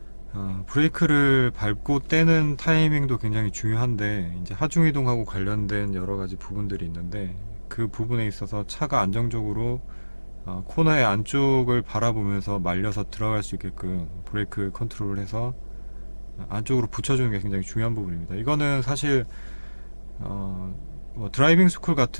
브레이크를 밟고 떼는 타이밍도 굉장히 중요한데, 이제 하중 이동하고 관련된 여러 가지 부분들이 있는데, 그 부분에 있어서 차가 안정적으로 코너의 안쪽을 바라보면서 말려서 들어갈 수 있게끔 브레이크 컨트롤을 해서 안쪽으로 붙여주는 게 굉장히 중요한 부분입니다. 이거는 사실 뭐 드라이빙 스쿨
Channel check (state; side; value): inverted; both; correlation -1.00